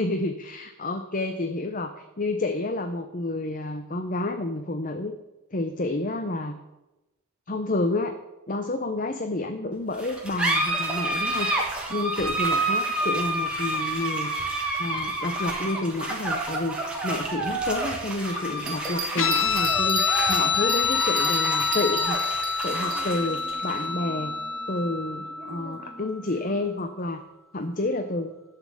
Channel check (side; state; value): both; normal; correlation 0.34